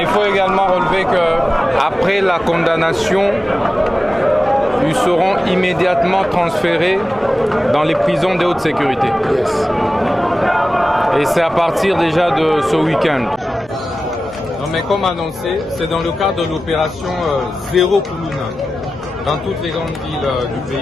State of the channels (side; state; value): right; noise; hum, 29 dB below the sound